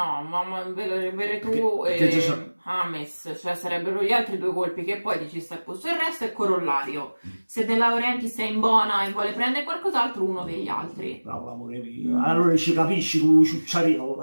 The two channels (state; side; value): inverted; both; correlation -1.00